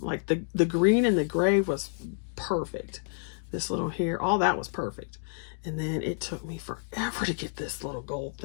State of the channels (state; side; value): silent; right; digital silence